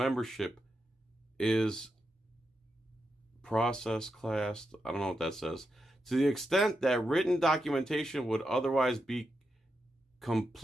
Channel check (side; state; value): both; normal; correlation 0.86